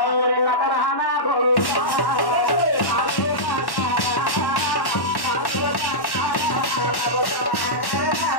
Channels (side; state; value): right; late; 1.1 ms